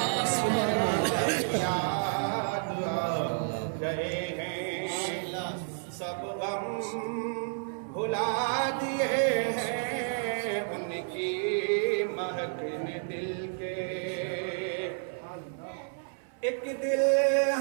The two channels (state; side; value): silent; left; 57 dB below the other